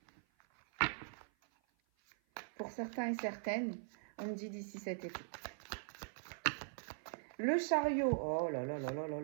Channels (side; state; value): left; silent; 50 dB below the other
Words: Pour certains et certaines, on me dit d'ici cet été. Le chariot, oh là là là là là